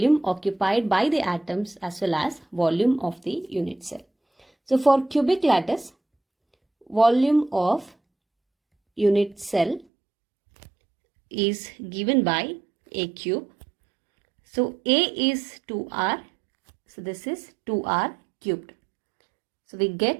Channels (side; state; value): left; drops out; at 9.9 s